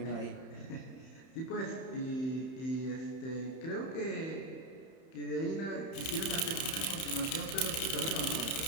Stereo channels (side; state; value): right; late; 31 ms